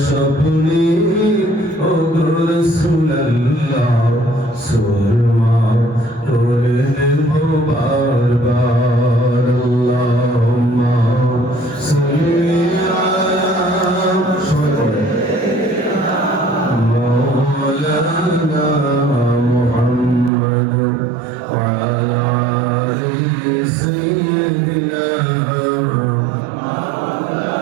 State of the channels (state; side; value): drops out; left; at 20.3 s